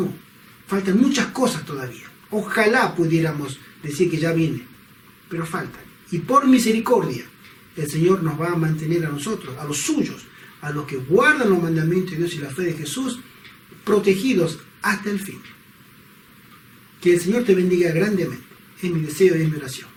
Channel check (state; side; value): identical; both; correlation 1.00